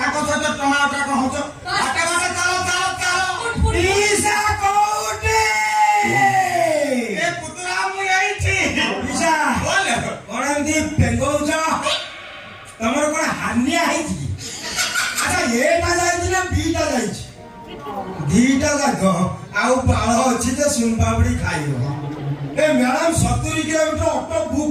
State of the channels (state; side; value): identical; both; correlation 1.00